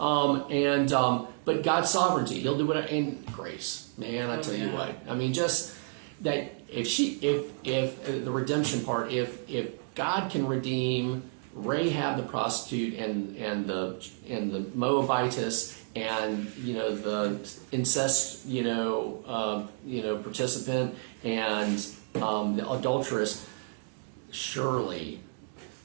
God's sovereignty, He'll do whatever, and grace. Man, I tell you what. I mean, just that if the redemption part, if God can redeem Rahab the prostitute and the Moabitess and the incest participant and the adulteress, surely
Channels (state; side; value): silent; left; 57 dB below the other